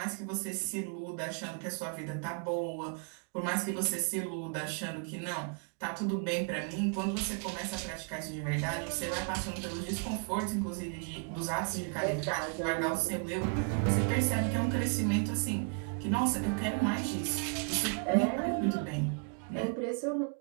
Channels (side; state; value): left; quieter; 38.9 dB